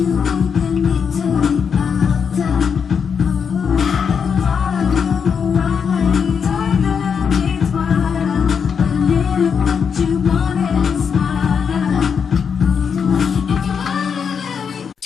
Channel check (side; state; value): right; quieter; 6.6 dB